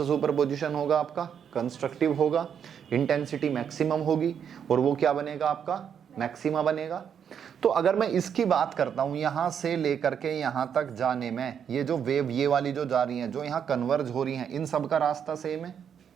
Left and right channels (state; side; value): quieter; left; 8.0 dB